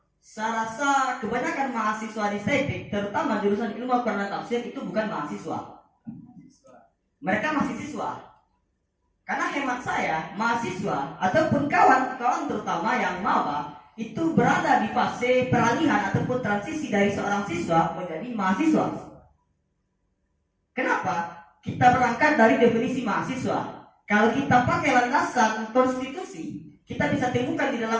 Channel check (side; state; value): both; identical; correlation 1.00